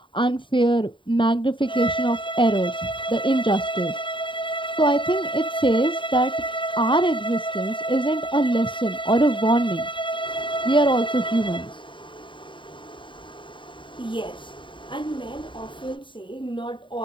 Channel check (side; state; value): right; late; 0.24 ms